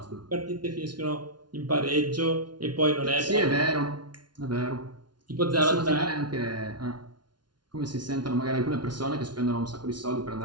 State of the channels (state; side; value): late; left; 0.70 ms